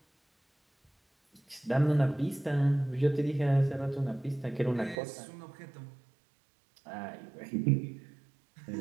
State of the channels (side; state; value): left; drops out; at 5.0 s